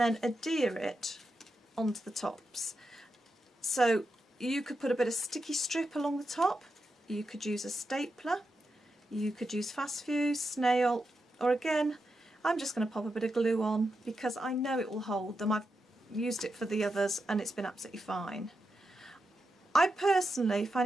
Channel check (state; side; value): normal; both; correlation 0.87